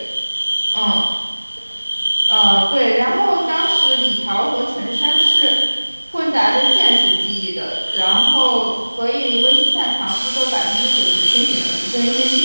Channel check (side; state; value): both; inverted; correlation -1.00